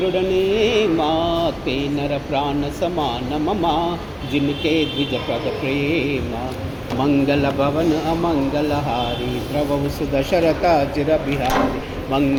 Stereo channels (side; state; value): both; identical; correlation 1.00